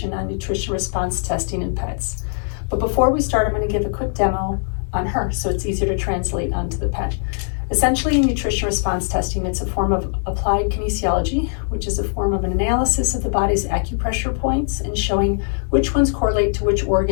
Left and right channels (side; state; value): right; silent; 65 dB below the other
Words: on nutrition response testing in pets. But before we start, I'm going to give a quick demo on her so it's easier to translate onto the pet. Essentially, nutrition response testing, it's a form of applied kinesiology, which is a form of an analysis of the body's acupressure points and showing which ones correlate to which